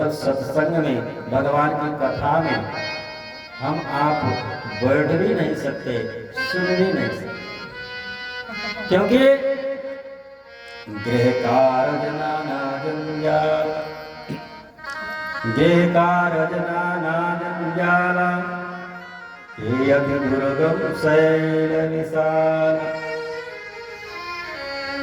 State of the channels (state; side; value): identical; both; correlation 1.00